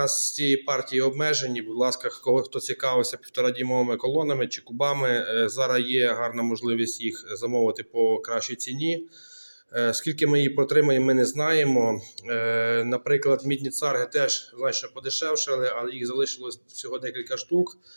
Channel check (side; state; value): both; inverted; correlation -1.00